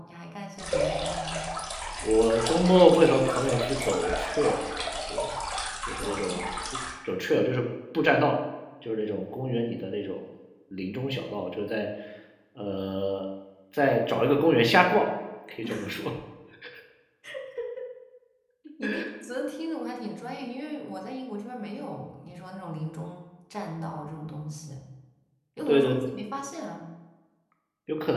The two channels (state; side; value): identical; both; correlation 1.00